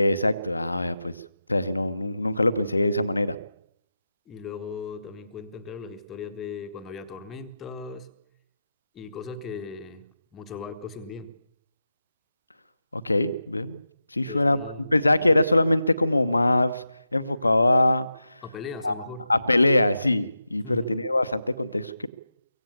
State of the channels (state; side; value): inverted; both; correlation -0.91